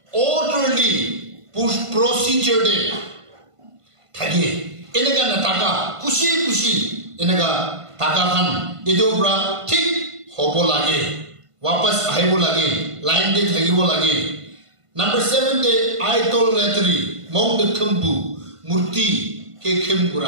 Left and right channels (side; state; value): left; late; 1.5 ms